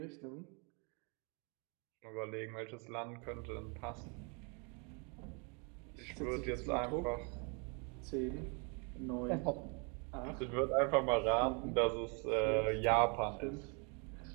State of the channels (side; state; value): left; quieter; 34.5 dB